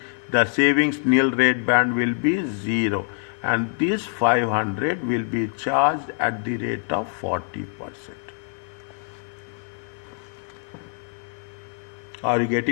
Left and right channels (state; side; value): silent; right; 56 dB below the other